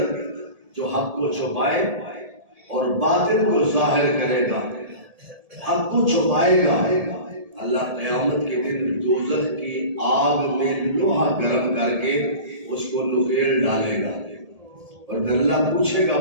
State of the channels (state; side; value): late; left; 1.7 ms